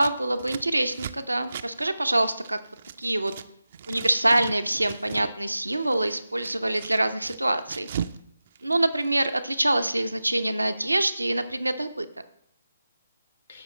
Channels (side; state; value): both; inverted; correlation -0.95